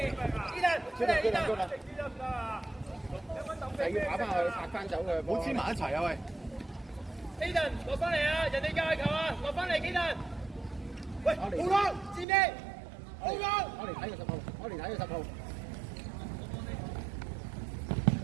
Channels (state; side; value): drops out; left; at 12.2 s